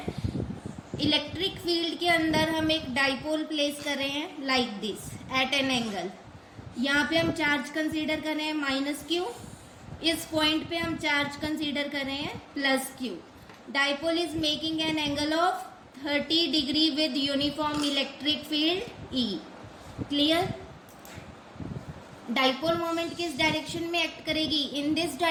इलेक्ट्रिक फील्ड के अंदर हम एक डाइपोल प्लेस कर रहे हैं like this eight an angle. यहाँ पे हम चार्ज कंसीडर कर रहे हैं माइनस क्यू, इस पॉइंट पे हम चार्ज कंसीडर कर रहे हैं plus Q. Dipole is making an angle of 30 degree with uniform electric field E. Clear. Dipole moment किस डायरेक्शन में एक्ट करेगी? In this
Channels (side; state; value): both; identical; correlation 1.00